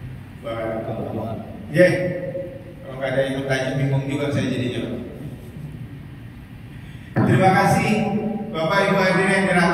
Barakallah. Ya. Kalau nggak ada yang bertanya, bingung juga saya jadinya. Terima kasih Bapak Ibu hadirin yang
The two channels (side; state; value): both; identical; correlation 1.00